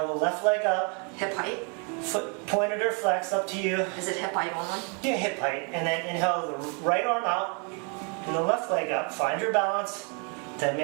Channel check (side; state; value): left; quieter; 36.5 dB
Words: the left leg up. Hip height. Foot pointed or flexed, up to you. Is it hip height only? Yeah, hip height. And then inhale the right arm out and the left leg up. Find your balance. Then